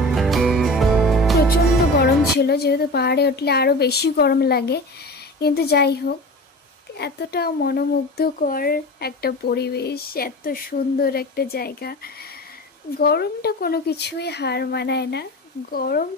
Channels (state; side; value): normal; both; correlation 0.33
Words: ছিল, যেহেতু পাহাড়ে উঠলে আরও বেশি গরম লাগে। কিন্তু যাই হোক, এতটা মনোমুগ্ধকর একটা পরিবেশ, এত সুন্দর একটা জায়গা, গরমটা কোনো কিছুই হার মানায় না। গরম